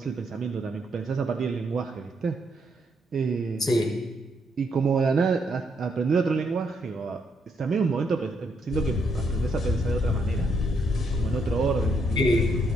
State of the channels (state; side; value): normal; both; correlation 0.75